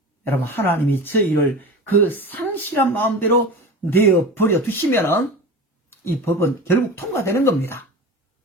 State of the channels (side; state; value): both; normal; correlation 0.31